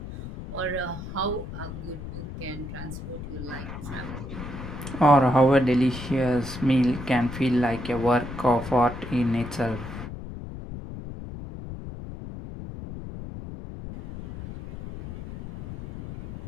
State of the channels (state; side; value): noise; left; rumble, 10 dB below the sound